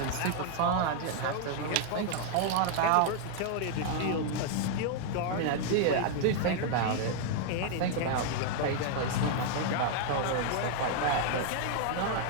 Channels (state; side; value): different; both; correlation 0.00